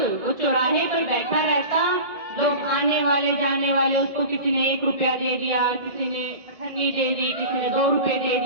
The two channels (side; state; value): left; late; 1.7 ms